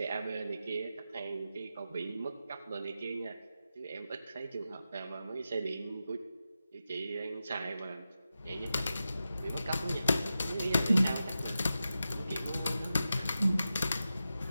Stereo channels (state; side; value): inverted; both; correlation -0.91